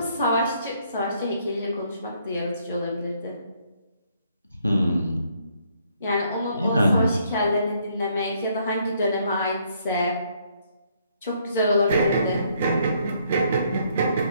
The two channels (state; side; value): inverted; both; correlation -0.69